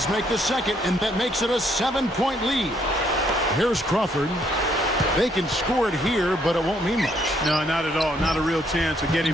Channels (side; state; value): both; normal; correlation 0.69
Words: make the second, and that makes it a 7-point lead. Here's Crawford. They can score it here, but it won't mean much. No, not at all. Not a real chance of